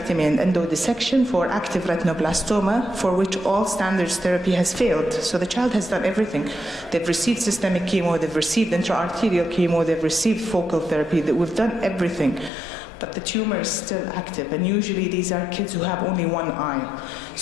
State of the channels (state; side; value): drops out; right; at 12.5 s